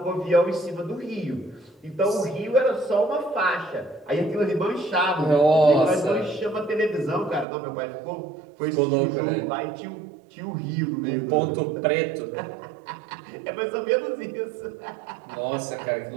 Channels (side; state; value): left; drops out; at 7.5 s